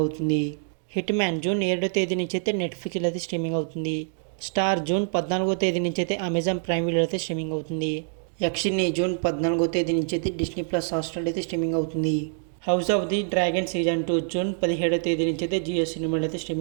అవుతుంది. హిట్ మ్యాన్ జూన్ 7వ తేదీ నుంచి అయితే నెట్ఫ్లిక్స్లో అయితే స్ట్రీమింగ్ అవుతుంది. స్టార్ జూన్ 14వ తేదీ నుంచి అయితే అమెజాన్ ప్రైమ్ వీడియో అయితే స్ట్రీమింగ్ అవుతుంది. యక్షిని జూన్ 14వ తేదీ నుంచి అయితే డిస్నీ ప్లస్ హాట్‌స్టార్ అయితే స్ట్రీమింగ్ అవుతుంది. House of the dragon season 2 June 17వ తేదీ నుంచి అయితే జియో సినిమాలో అయితే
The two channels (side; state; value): left; silent; 61 dB below the other